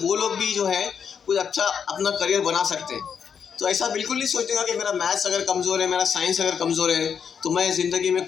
लोग भी जो है कुछ अच्छा अपना करियर बना सकते हैं। तो ऐसा बिल्कुल नहीं सोचेगा कि मेरा मैथ्स अगर कमज़ोर है, मेरा साइंस अगर कमज़ोर है, तो मैं ज़िंदगी में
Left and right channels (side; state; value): right; quieter; 7.1 dB